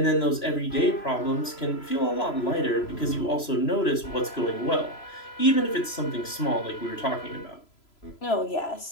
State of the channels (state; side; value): late; right; 3.0 ms